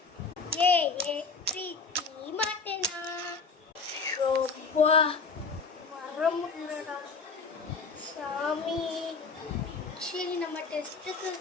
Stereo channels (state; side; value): quieter; right; 4.6 dB